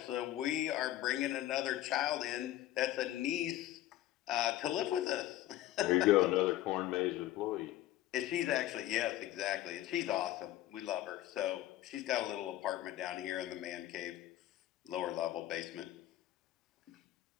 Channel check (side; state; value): right; quieter; 14.3 dB